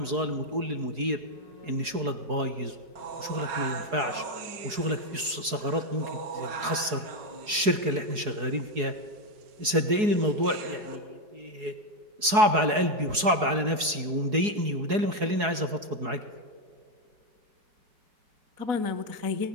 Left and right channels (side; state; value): left; late; 4.7 ms